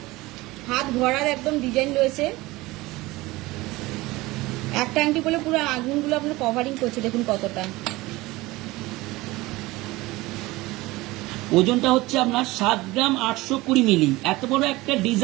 হাত ভরার একদম ডিজাইন রয়েছে, একটা আংটি বলে পুরো আগুনগুলো আপনার কভারিং করছে, দেখুন কতটা। ওজনটা হচ্ছে আপনার 7 গ্রাম 820 মিলি। এত বড় একটা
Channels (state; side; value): quieter; left; 20.2 dB